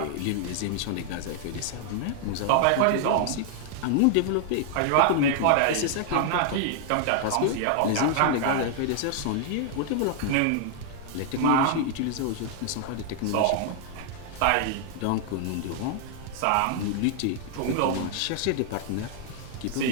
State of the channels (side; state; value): both; different; correlation 0.00